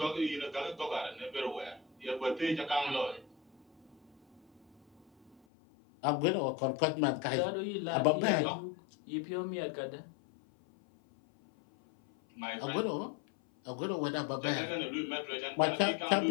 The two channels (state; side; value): drops out; right; at 5.4 s